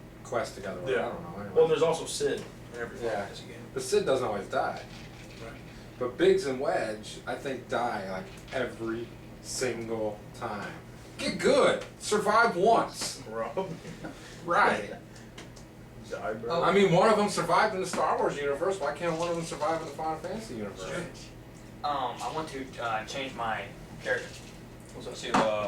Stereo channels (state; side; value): identical; both; correlation 1.00